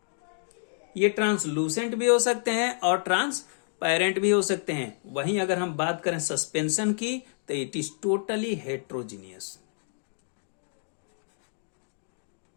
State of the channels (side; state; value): right; silent; digital silence